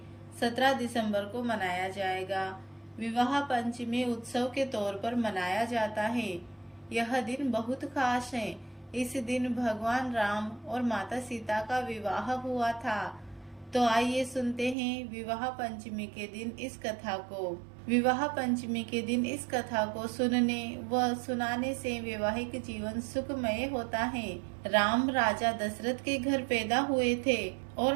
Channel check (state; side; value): drops out; left; at 14.8 s